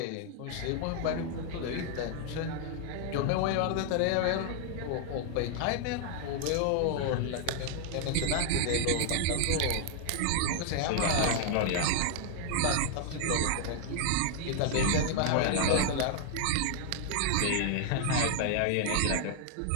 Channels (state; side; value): different; both; correlation 0.00